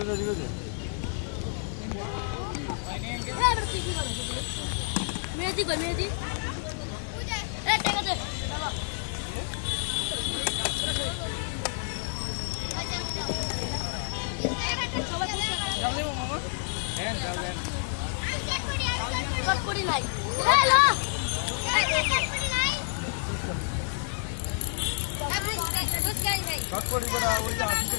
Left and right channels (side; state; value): right; silent; digital silence